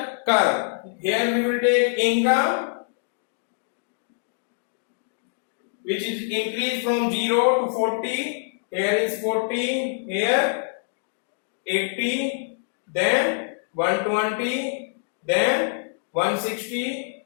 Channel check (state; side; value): silent; right; digital silence